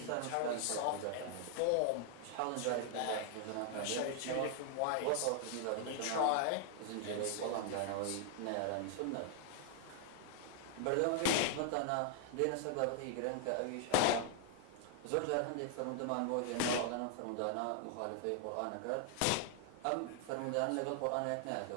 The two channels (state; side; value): different; both; correlation 0.00